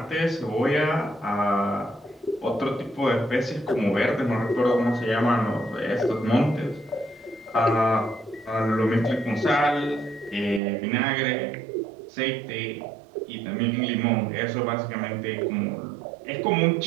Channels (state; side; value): drops out; left; at 10.6 s